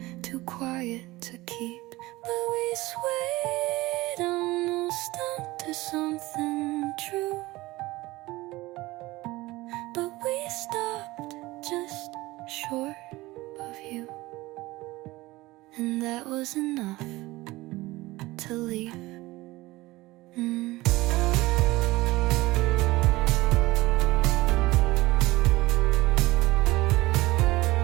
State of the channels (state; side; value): quieter; left; 19.6 dB